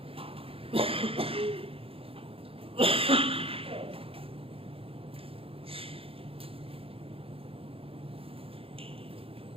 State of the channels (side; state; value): left; late; 0.27 ms